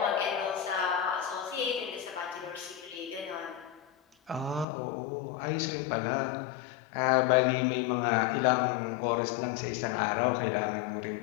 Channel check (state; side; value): drops out; right; at 4.7 s